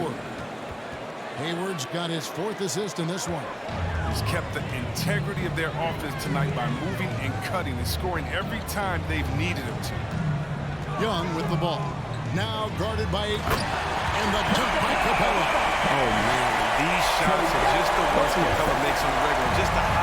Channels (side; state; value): both; identical; correlation 1.00